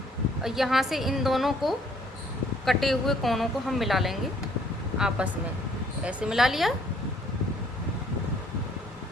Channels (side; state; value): both; normal; correlation 0.63